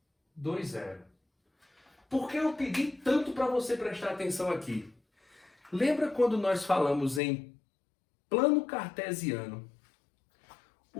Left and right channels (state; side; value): drops out; right; at 7.2 s